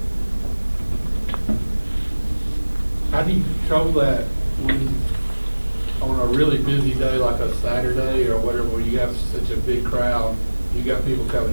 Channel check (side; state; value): both; inverted; correlation -1.00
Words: How do you control that when, on a really busy day like a Saturday or whatever, where you have such a big crowd, you got people